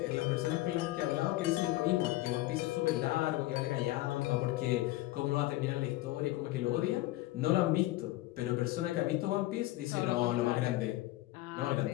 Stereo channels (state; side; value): quieter; right; 17.4 dB